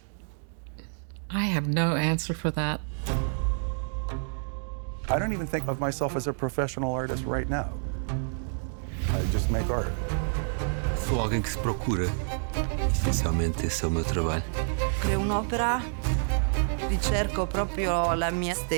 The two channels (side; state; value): left; silent; digital silence